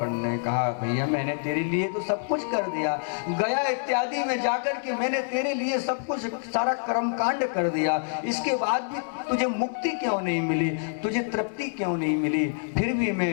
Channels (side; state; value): right; silent; digital silence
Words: ने कहा भैया मैंने तेरे लिए तो सब कुछ कर दिया, गया इत्यादि में जाकर के मैंने तेरे लिए सब कुछ, सारा कर्म कांड कर दिया, इसके बाद भी तुझे मुक्ति क्यों नहीं मिली, तुझे तृप्ति क्यों नहीं मिली। फिर भी